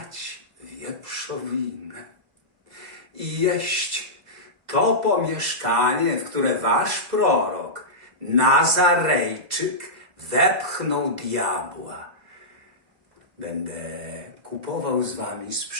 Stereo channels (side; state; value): left; late; 2.0 ms